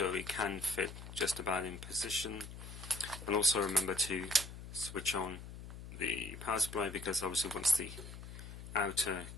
it can fit just about in position. And also remember to switch on the power supply, because obviously once the outer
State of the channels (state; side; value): noise; left; hum, 12 dB below the sound